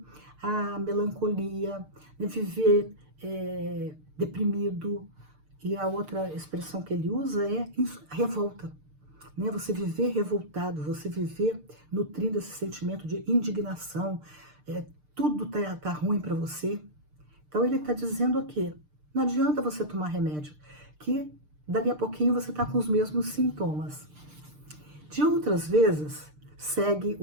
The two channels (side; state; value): left; late; 6.6 ms